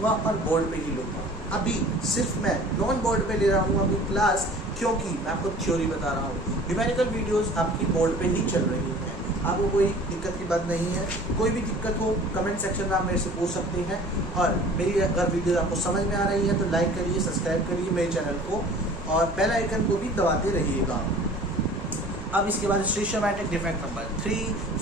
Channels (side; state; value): both; normal; correlation 0.46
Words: और बोर्ड पे ही लूँगा। अभी सिर्फ मैं नॉन बोर्ड पे ले रहा हूँ अभी क्लास, क्योंकि मैं आपको थ्योरी बता रहा हूँ। न्यूमेरिकल वीडियोस आपकी बोर्ड पे ही चल रही हैं, आपको कोई दिक्कत की बात नहीं है। कोई भी दिक्कत हो कमेंट सेक्शन में आप मेरे से पूछ सकते हैं। और मेरी अगर वीडियो आपको समझ में आ रही है तो लाइक करिए, सब्सक्राइब करिए मेरे चैनल को और बेल आइकन को भी दबाते रहिएगा। अब इसके बाद स्टीशियोमेट्रिक डिफेक्ट नंबर 3,